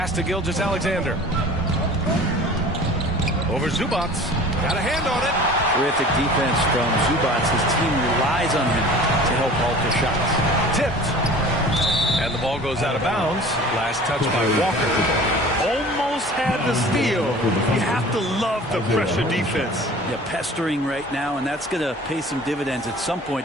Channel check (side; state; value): both; normal; correlation 0.43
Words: to Gilgeous-Alexander. Over Zubac. Got a hand on it. Terrific defense from Zubac. His team relies on him to help alter shots. Tipped. And the ball goes out of bounds. Last touch by Walker. Almost had the steal. You have to love the pressure defense. Yeah, pestering right now, and that's going to pay some dividends. At some